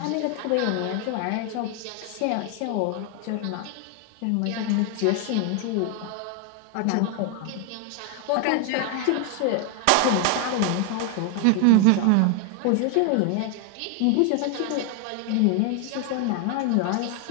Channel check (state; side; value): different; both; correlation 0.00